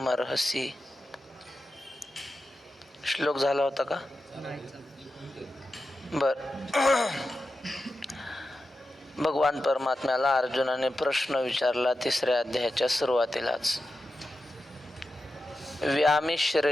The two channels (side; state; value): both; normal; correlation 0.91